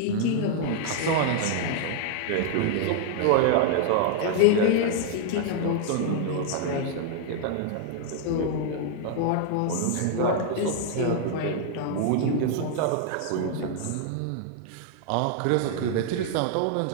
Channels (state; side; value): different; both; correlation 0.00